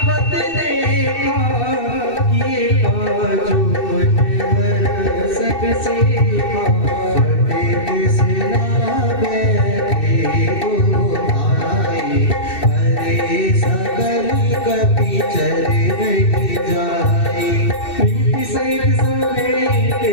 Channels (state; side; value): late; right; 2.7 ms